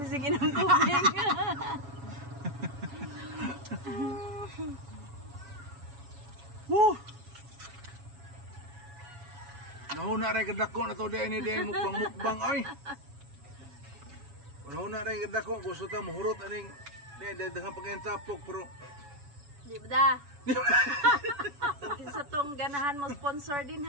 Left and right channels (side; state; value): left; late; 7.0 ms